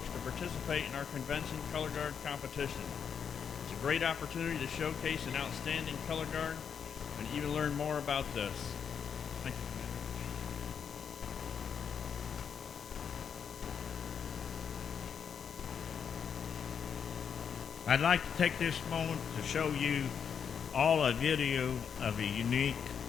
to participate in our convention color guard competition. It's a great opportunity to showcase an outstanding color guard and even learn more about this. Thank you, Commander. I'd like to take this moment to show you all a video of a unique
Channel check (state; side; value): quieter; right; 7.2 dB